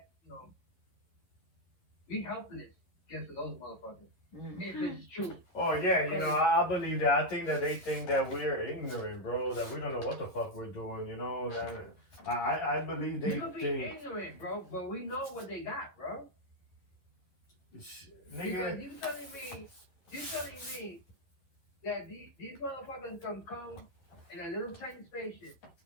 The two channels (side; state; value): right; late; 11 ms